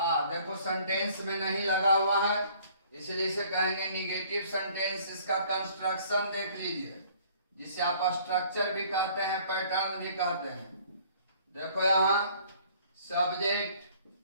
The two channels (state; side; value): inverted; both; correlation -0.56